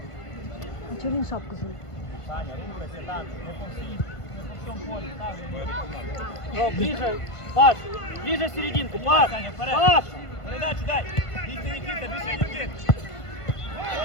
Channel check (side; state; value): right; late; 1.5 ms